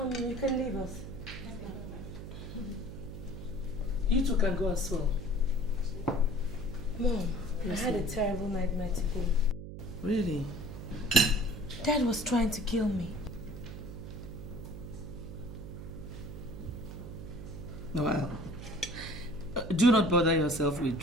can leave us. You two can go as well. Mom, yes, I had a terrible nightmare today. Really? Dad was trying to kill me. Well, do not bother yourself with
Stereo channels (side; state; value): right; noise; hum, 10 dB below the sound